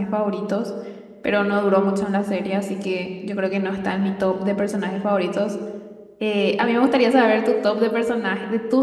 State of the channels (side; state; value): both; identical; correlation 1.00